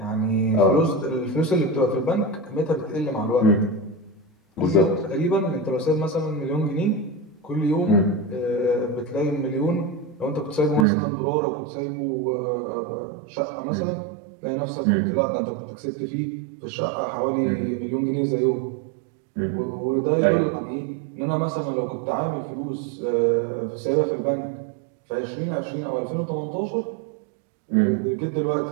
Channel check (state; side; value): drops out; left; at 10.9 s